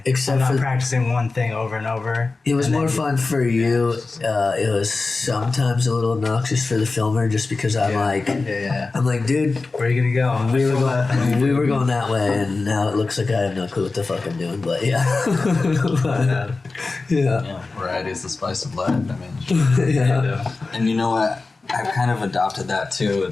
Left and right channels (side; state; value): right; quieter; 3.8 dB